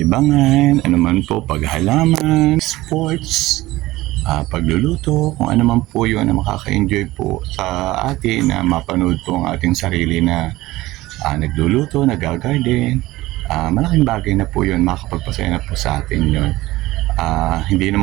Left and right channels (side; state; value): left; quieter; 18.1 dB